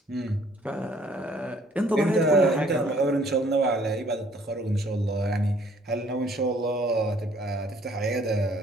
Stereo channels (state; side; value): normal; both; correlation 0.59